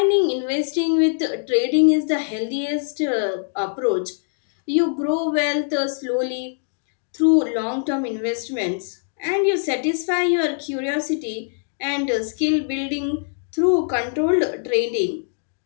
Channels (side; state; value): right; silent; digital silence